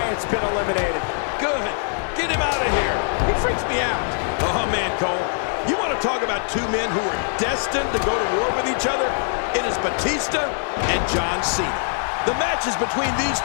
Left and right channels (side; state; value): right; silent; 64 dB below the other